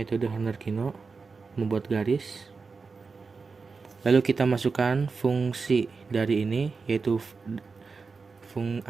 Horner-Kino, membuat garis. Lalu kita masukkan fungsi dari ini, yaitu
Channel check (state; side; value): quieter; left; 4.6 dB